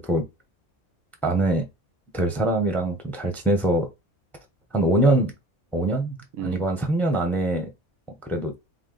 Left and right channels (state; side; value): normal; both; correlation 0.48